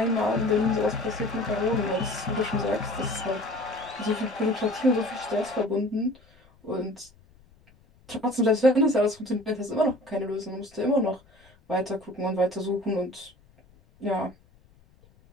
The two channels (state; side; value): noise; left; rumble, 29 dB below the sound